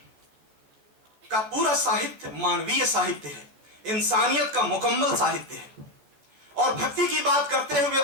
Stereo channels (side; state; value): left; late; 14 ms